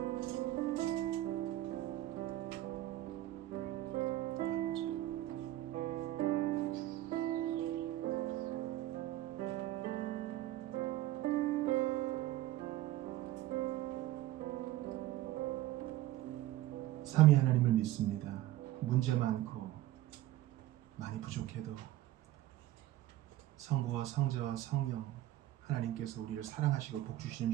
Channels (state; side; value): quieter; left; 14.9 dB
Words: 삼위 하나님을 믿습니다. 문제 많고 많이 부족해도 성부와 성자와 성령 하나님께서 우리를 사랑하시고 복주시는